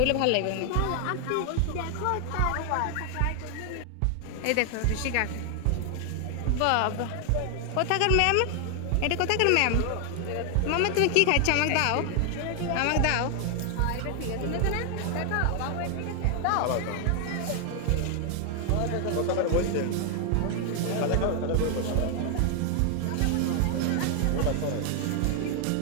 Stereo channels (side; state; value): both; different; correlation 0.00